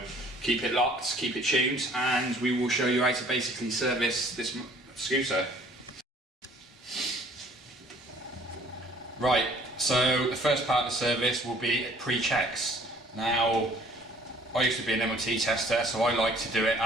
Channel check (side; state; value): both; normal; correlation 0.56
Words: keep it locked, keep it tuned, and we will show you how to basically service this scooter. Right, so the first part of the service will be pre-checks. Now, I used to be an MOT tester, so I like to do it